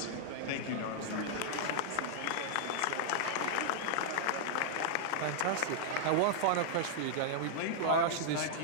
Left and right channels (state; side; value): different; both; correlation -0.01